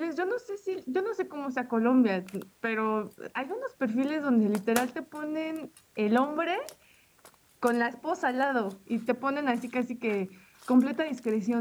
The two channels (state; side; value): identical; both; correlation 1.00